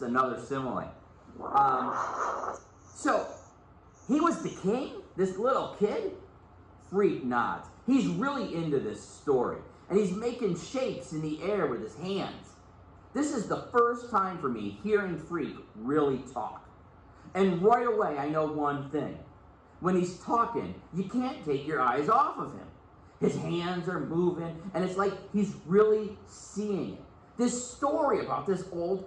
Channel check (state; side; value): identical; both; correlation 1.00